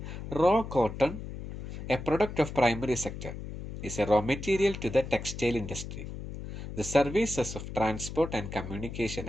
raw cotton, a product of primary sector, is a raw material to the textile industry. The services of transport and communication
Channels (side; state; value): left; noise; hum, 9 dB below the sound